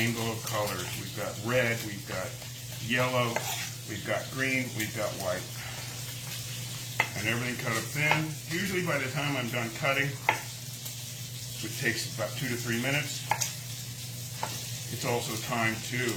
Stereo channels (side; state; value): both; identical; correlation 1.00